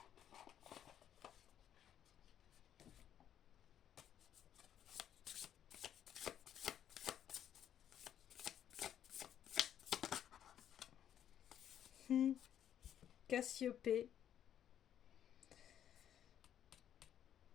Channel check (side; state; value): right; quieter; 10.1 dB